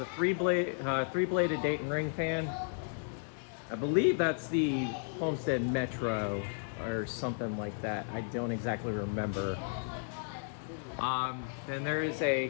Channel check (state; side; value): silent; right; digital silence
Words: three-bladed Dayton ring fan. I believe that's the Homestead Metro or something like that. I don't exactly remember. Then there is a